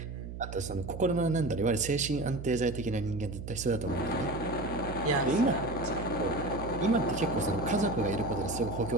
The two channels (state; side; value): noise; right; hum, 9 dB below the sound